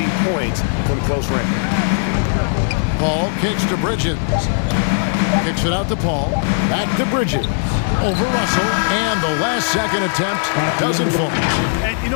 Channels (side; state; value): right; silent; digital silence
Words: points from close range. Paul kicks to Bridges. Kicks it out to Paul. Back to Bridges. Over Russell. And the last second attempt doesn't fall. And, you